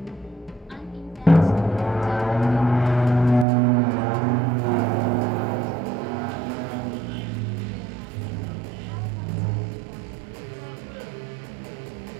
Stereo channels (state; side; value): drops out; left; at 3.5 s